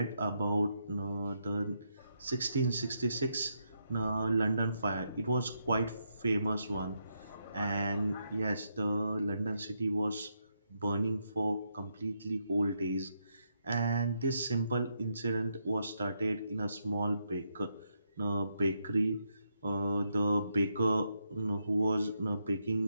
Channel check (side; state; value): both; inverted; correlation -0.80